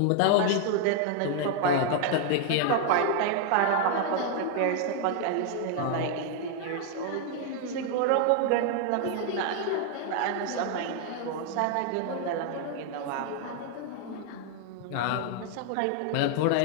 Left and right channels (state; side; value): different; both; correlation 0.00